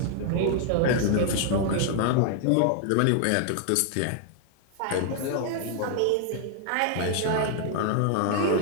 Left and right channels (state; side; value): different; both; correlation 0.00